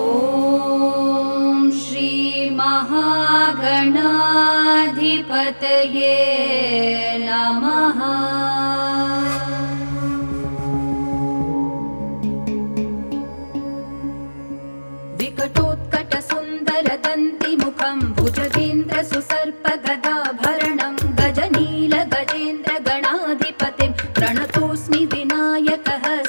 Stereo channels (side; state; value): both; inverted; correlation -1.00